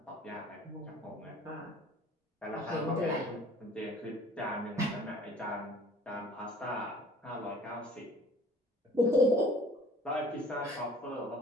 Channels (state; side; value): normal; both; correlation 0.51